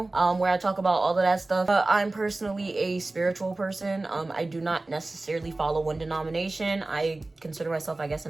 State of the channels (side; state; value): left; quieter; 3.0 dB